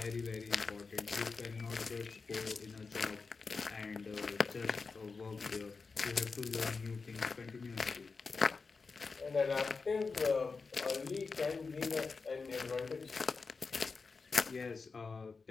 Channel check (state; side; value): quieter; right; 4.6 dB